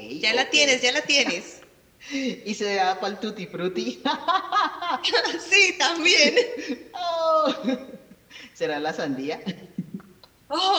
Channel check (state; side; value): identical; both; correlation 1.00